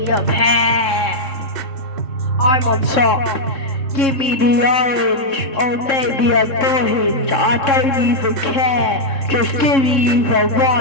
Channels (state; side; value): late; right; 3.7 ms